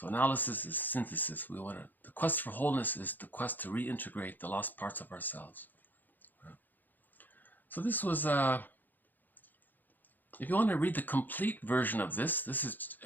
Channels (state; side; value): late; right; 0.087 ms